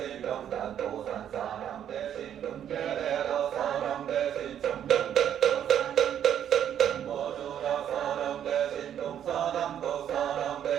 명단도산사람 대신 금계대도사람 대신 정명대도사람 정모주라사람 대신 동사남도사람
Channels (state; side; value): quieter; left; 9.8 dB